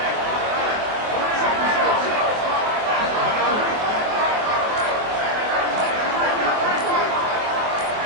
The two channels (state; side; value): late; left; 24 ms